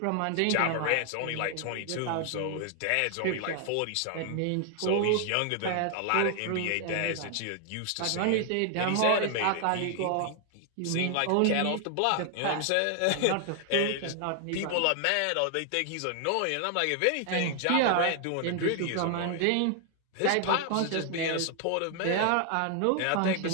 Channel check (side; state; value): both; different; correlation 0.00